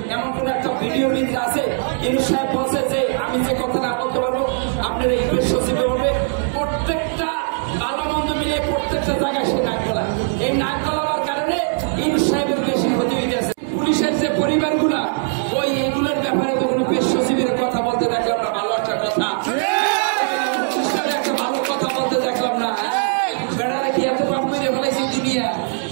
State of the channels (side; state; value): left; silent; digital silence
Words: এমন কোন একটা ভিডিও ভিতরে আছে ইউনূস সাহেব বলছে যে আমি যে কথা না বলতে পারবো আপনার এই পেশ সচিবে বলবে। প্রত্যেকটা ভালো মন্দ মিলে প্রত্যেকটা জায়গায় সে নাক গলা, এই নাক গলাবার কারণে ইউনূস সাহেবের বেশি ক্ষতি হয়ে গেছে। পুলিশের যে পরিবারগুলা ওই এগুলোর ব্যাপারে তো কোনো পেশ সচিবের কথা বলতে দেখলাম না, ভালো একটা কথা একটা ভালো কথা বলতে দেখলাম না। বেড়ারা কি এত পাপ করে ফেলাইছে দুনিয়া,